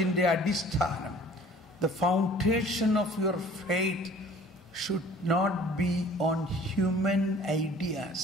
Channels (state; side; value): normal; both; correlation 0.50